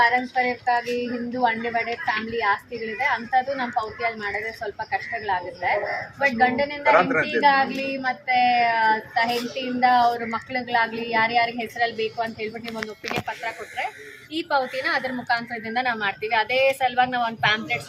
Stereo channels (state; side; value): identical; both; correlation 1.00